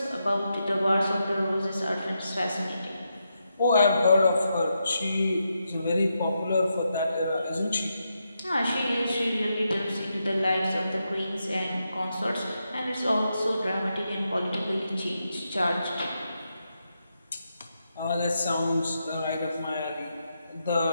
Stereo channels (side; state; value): both; inverted; correlation -0.84